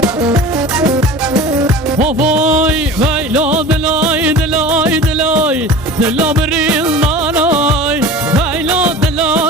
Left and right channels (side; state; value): both; normal; correlation 0.38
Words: وفاي فاي لا دلاي دلاي دلاي دلا بريل ناراي فاي لا